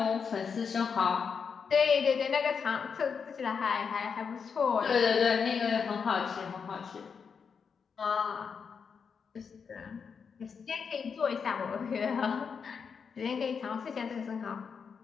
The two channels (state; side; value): quieter; right; 6.1 dB